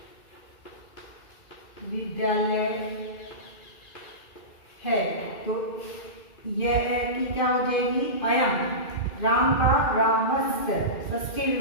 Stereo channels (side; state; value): right; late; 2.5 ms